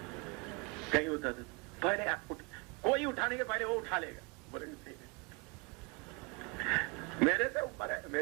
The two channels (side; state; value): left; quieter; 29.4 dB